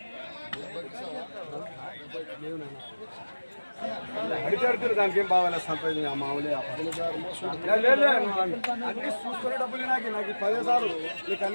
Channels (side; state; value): both; inverted; correlation -1.00